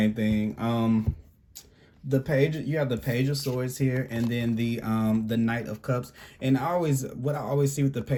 thing. The page, you have the Page of Swords here, and then the Knight of Cups. And what I always see with the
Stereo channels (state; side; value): identical; both; correlation 1.00